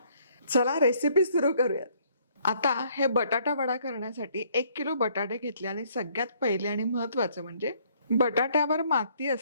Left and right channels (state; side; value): inverted; both; correlation -0.64